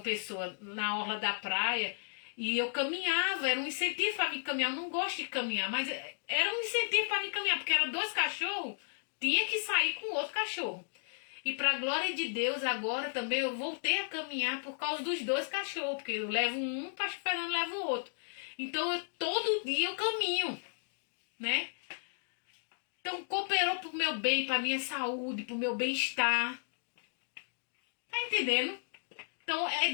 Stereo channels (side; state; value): right; silent; digital silence